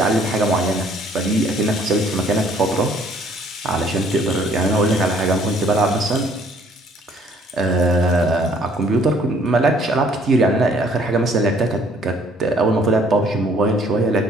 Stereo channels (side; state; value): both; normal; correlation 0.60